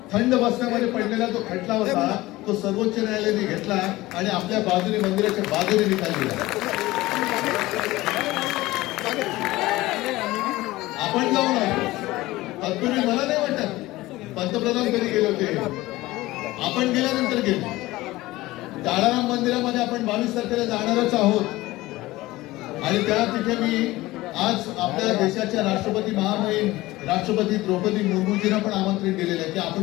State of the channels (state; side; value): quieter; right; 18.5 dB